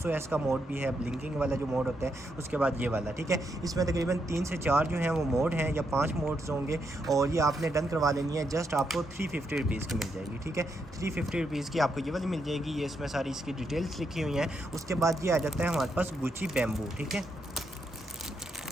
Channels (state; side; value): normal; both; correlation 0.80